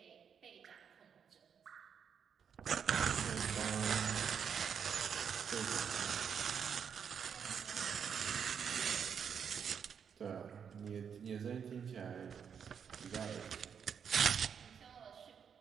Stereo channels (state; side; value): quieter; left; 7.3 dB